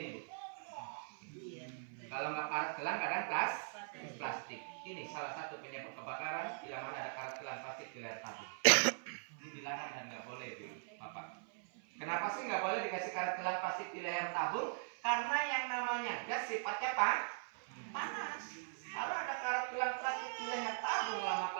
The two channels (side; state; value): left; silent; 51 dB below the other